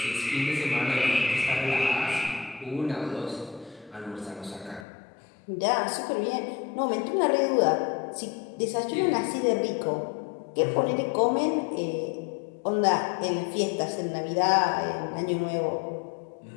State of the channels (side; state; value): right; drops out; at 4.9 s